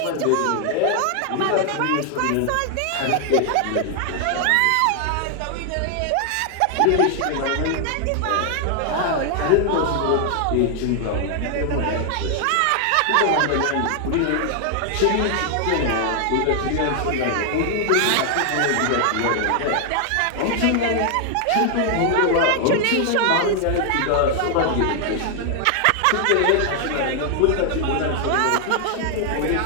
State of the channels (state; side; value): different; both; correlation 0.00